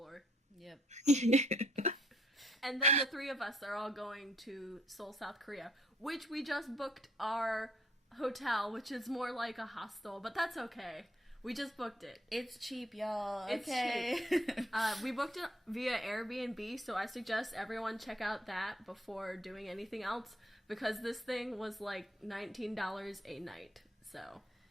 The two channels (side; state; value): both; normal; correlation 0.66